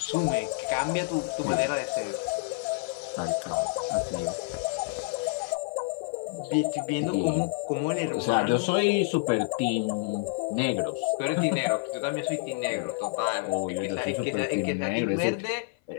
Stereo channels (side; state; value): right; silent; 57 dB below the other